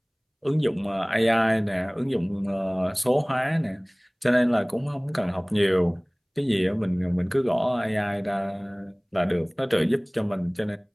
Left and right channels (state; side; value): identical; both; correlation 1.00